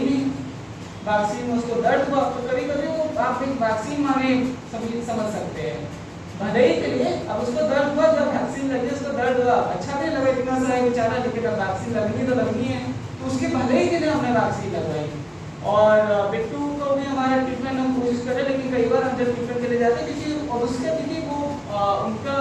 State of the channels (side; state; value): both; identical; correlation 1.00